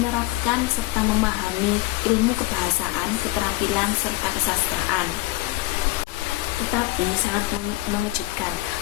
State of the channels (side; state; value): right; quieter; 19.1 dB